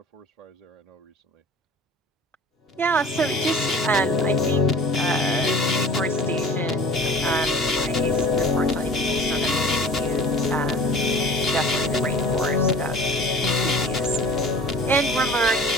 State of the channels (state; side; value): normal; both; correlation 0.43